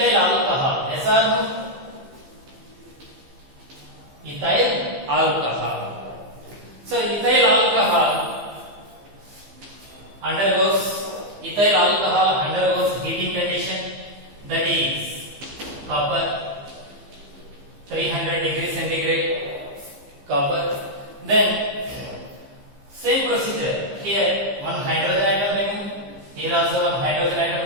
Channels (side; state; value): left; late; 15 ms